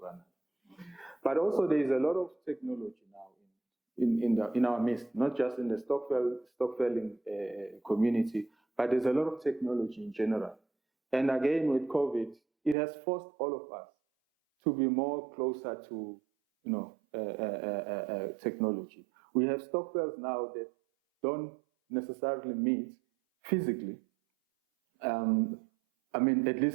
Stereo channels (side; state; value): left; drops out; at 12.8 s